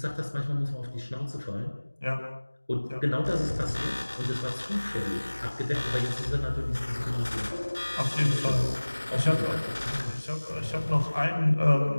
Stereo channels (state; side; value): inverted; both; correlation -1.00